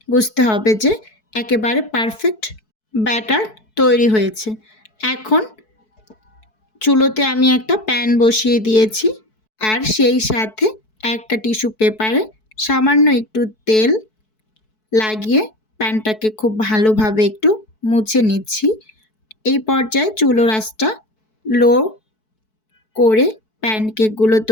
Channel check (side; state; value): right; late; 4.6 ms